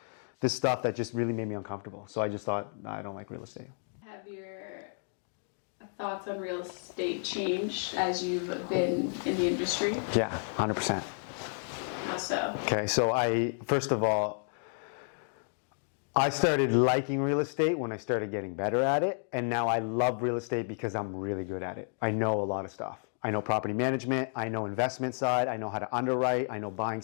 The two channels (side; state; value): right; silent; 57 dB below the other